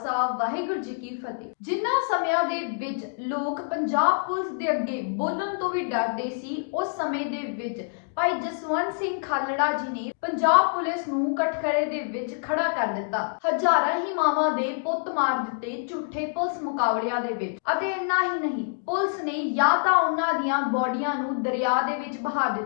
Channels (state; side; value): silent; right; digital silence